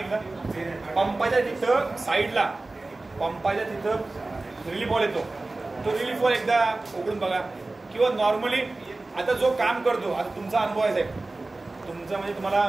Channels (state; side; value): quieter; left; 3.1 dB